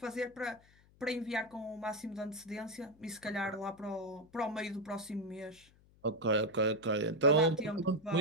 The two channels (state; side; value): noise; left; hum, 28 dB below the sound